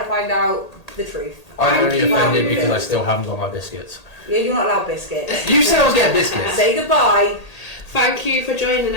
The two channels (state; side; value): late; right; 1.8 ms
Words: to find out the truth. I'm only offended because I still haven't got my biscuits. Yeah, you're not allowed biscuits. You said I was getting biscuits. Say goodbye. Thank you for joining